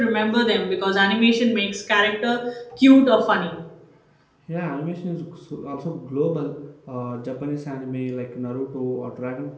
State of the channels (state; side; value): identical; both; correlation 1.00